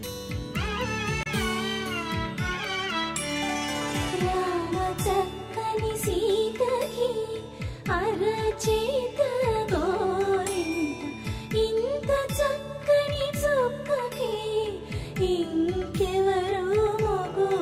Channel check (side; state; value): both; identical; correlation 1.00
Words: అరచేత గోరింట ఇంత చక్కని చుక్కకి ఇంకెవరు